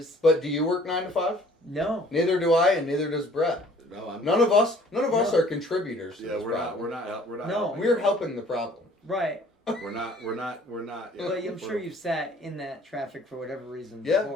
But do you work 9 to 5? no. Neither do I, and neither does Brett. No, I'm. None of us No. are contributors. To Yeah, this we're not. problem. We're not. We're not. No. helping. We're helping the problem. Right. We're not. Yeah, But I'm sure you've sat in that traffic for whatever reason Yeah,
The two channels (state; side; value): normal; both; correlation 0.55